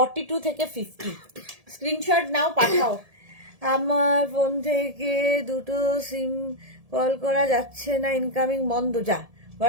থেকে 50। স্ক্রিনশট নাও, পাঠাও। আমার ফোন থেকে দুটো সিম কল করা যাচ্ছে না, ইনকামিং বন্ধ। যা,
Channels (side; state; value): left; late; 1.7 ms